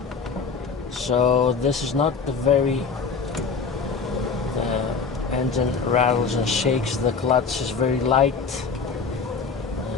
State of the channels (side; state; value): right; quieter; 5.1 dB